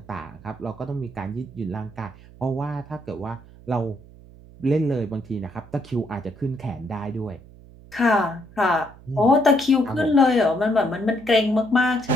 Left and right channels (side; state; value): right; noise; hum, 21 dB below the sound